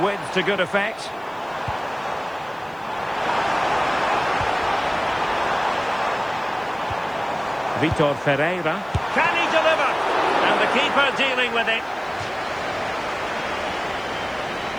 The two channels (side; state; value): right; noise; hiss, 30 dB below the sound